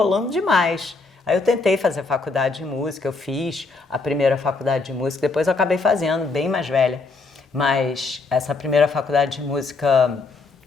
demais. Aí eu tentei fazer faculdade de música, eu fiz a primeira faculdade de música, depois eu acabei fazendo, bem mais velha. Mas essa primeira faculdade de música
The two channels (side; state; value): right; quieter; 3.9 dB